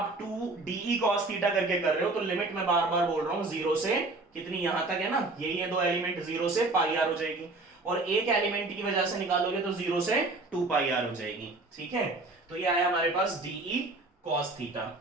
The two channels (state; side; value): quieter; left; 3.1 dB